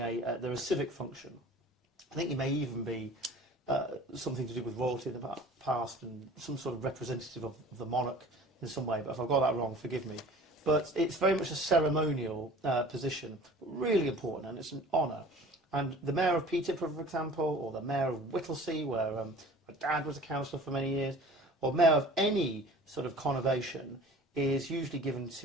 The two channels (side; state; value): both; normal; correlation 0.45